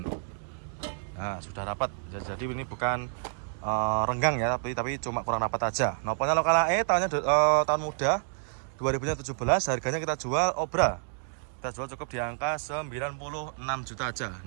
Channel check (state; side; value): silent; left; digital silence